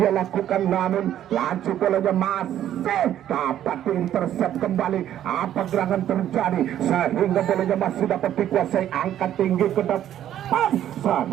lakukan, namun laju bolanya masih dapat diintersep kembali. Apa gerangan terjadi sehingga bolanya masih dapat dikuasai, angkat tinggi ke depan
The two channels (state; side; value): quieter; left; 11.3 dB